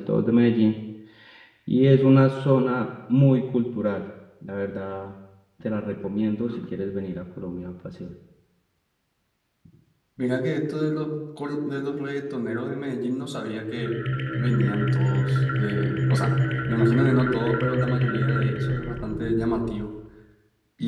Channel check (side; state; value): both; identical; correlation 1.00